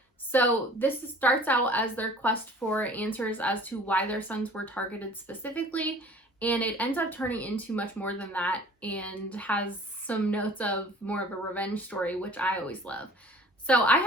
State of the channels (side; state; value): both; normal; correlation 0.48